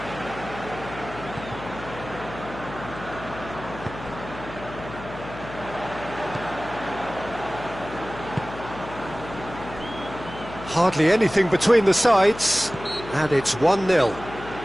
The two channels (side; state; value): left; noise; hum, 13 dB below the sound